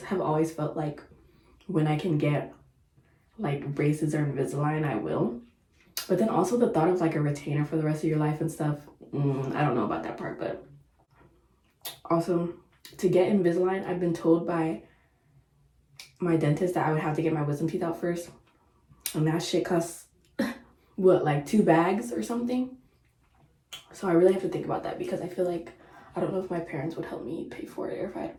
have always felt like when I can get like braces or Invisalign, I will. But then also the thought of like a retainer for the rest of your life and stuff, I don't know about that part. But also, to get Invisalign, I've been told by my dentist that I would have to get my wisdom teeth out first, and that shit costs what, like 2 bags or something. So I really have to think about that, because I feel like I don't know if my parents would help me pay for it, or if I had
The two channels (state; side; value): identical; both; correlation 1.00